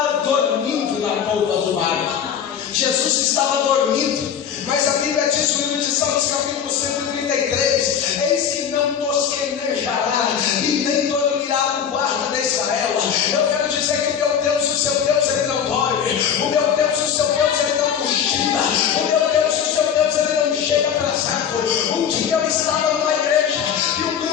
dormindo na polpa do barco. Jesus estava dormindo, mas a Bíblia diz no livro de Salmos, capítulo 133: eis que não tosquenejará e nem dormirá o guarda de Israel. Eu quero dizer que o meu Deus e o seu Deus, ele não dorme. O meu Deus e o seu Deus, ele não cochila. O meu Deus e o seu Deus, ele não chega atrasado. Um dia eu estava numa igreja e um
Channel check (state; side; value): quieter; right; 8.1 dB